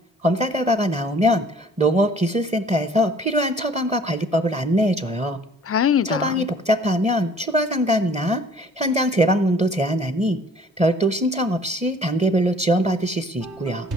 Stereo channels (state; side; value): normal; both; correlation 0.54